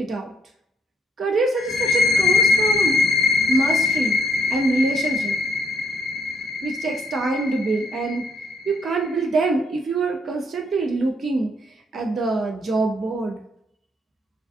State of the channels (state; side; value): normal; both; correlation 0.70